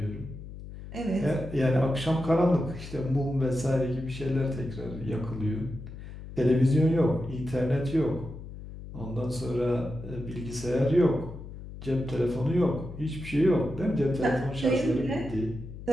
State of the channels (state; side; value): noise; left; hum, 12 dB below the sound